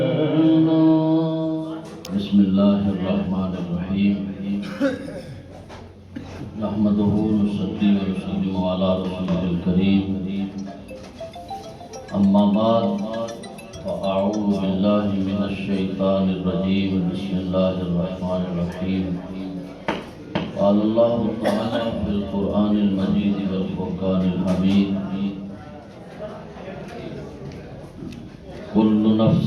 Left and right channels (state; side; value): identical; both; correlation 1.00